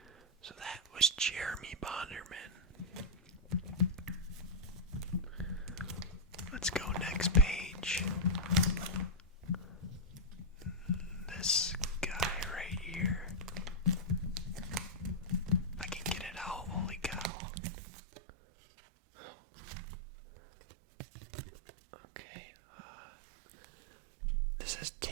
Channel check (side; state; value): left; drops out; at 17.3 s